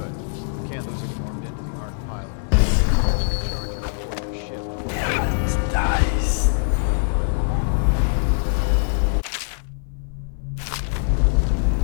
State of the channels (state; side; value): silent; right; 57 dB below the other